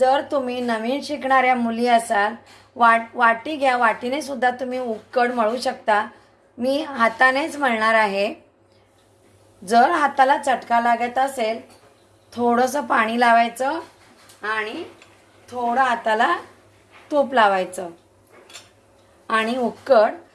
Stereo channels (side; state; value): both; identical; correlation 1.00